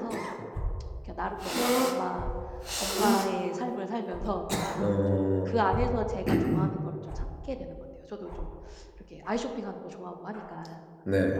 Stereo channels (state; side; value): identical; both; correlation 1.00